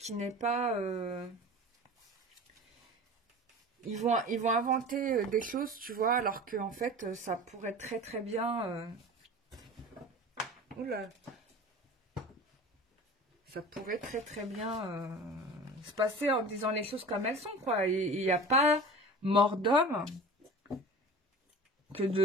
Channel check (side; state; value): both; normal; correlation 0.37